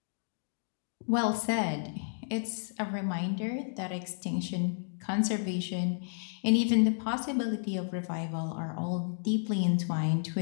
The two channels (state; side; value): silent; right; digital silence